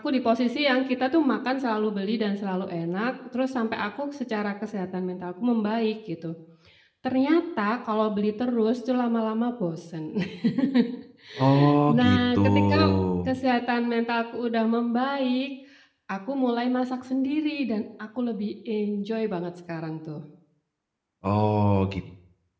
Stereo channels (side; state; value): both; identical; correlation 1.00